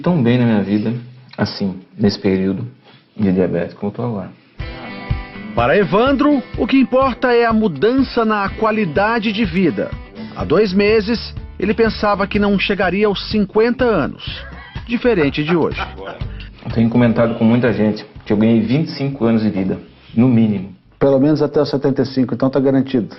bem na minha vida, assim, nesse período de diabetes como eu estou agora. Para Evandro, o que importa é a mudança na qualidade de vida. Há 2 meses, ele pensava que não chegaria aos 50 anos, diferente de hoje. Eu tenho comentado com muita gente que eu ganhei 25 anos de vida, no mínimo. Pelo menos até os 75, então tá garantido?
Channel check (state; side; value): identical; both; correlation 1.00